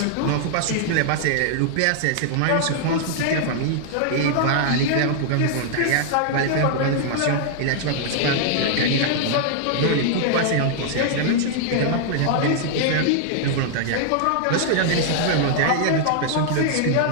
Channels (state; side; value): different; both; correlation -0.01